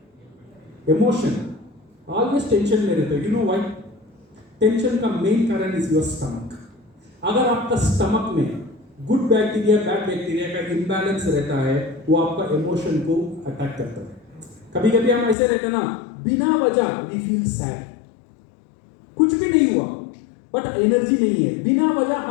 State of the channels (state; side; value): drops out; right; at 15.4 s